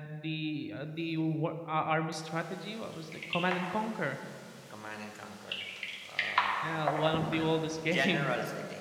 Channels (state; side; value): identical; both; correlation 1.00